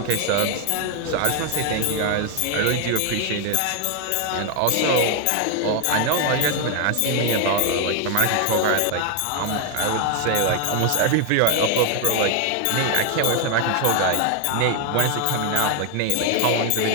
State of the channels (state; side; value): different; both; correlation 0.01